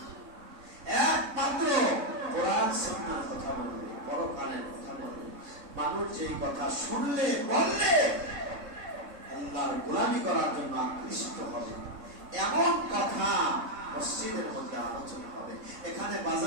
একমাত্র কোরআন সুন্নাহর কথা বলবে, পরকালের কথা বলবে। মানুষ যেই কথা শুনলে বললে আল্লাহর গোলামি করার জন্য আকৃষ্ট হবে, এমন কথা মসজিদের মধ্যে আলোচনা হবে। এখানে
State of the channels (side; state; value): left; late; 3.6 ms